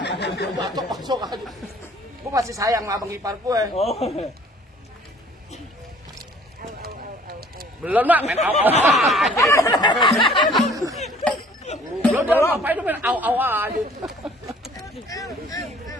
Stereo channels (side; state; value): both; normal; correlation 0.54